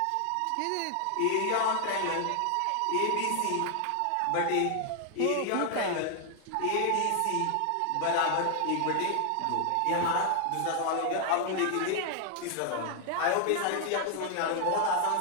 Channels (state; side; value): different; both; correlation 0.00